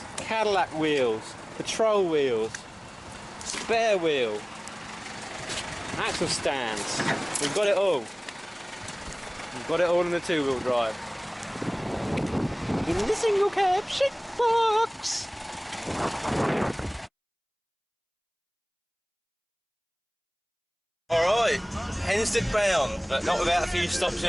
Cadillac wheels, patrol wheels, spare wheel, axle stands. We've got it all. We've got it all in the two-wheel drive. In the single cab shit box. Alright, Hensted bound, but not without a few stops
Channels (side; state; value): both; identical; correlation 1.00